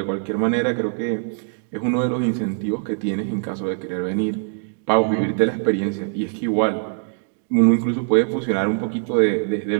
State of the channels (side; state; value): left; silent; digital silence